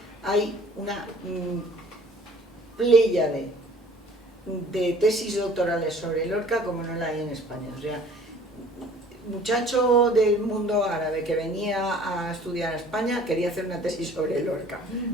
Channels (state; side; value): normal; both; correlation 0.51